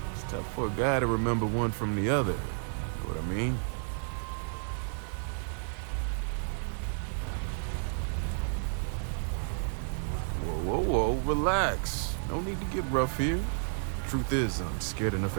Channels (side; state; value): left; silent; 57 dB below the other